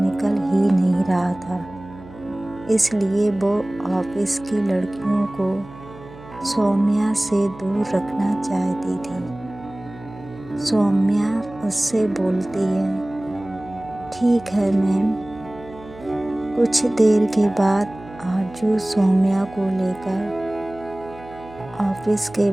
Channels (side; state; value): right; noise; hum, 18 dB below the sound